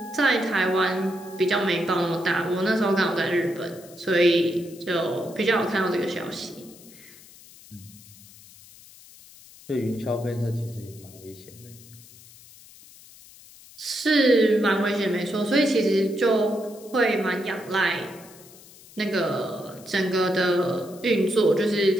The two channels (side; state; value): left; noise; hiss, 22 dB below the sound